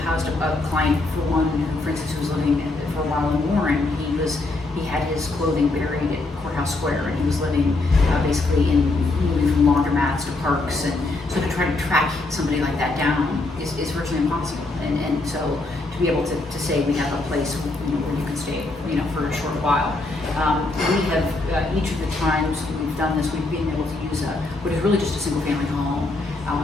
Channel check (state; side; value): quieter; right; 3.1 dB